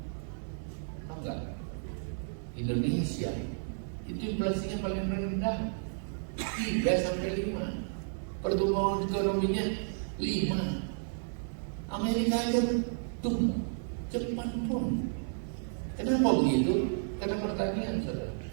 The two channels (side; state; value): left; silent; digital silence